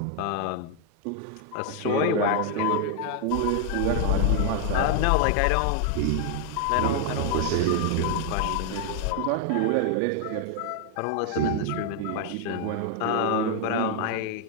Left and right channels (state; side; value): different; both; correlation 0.00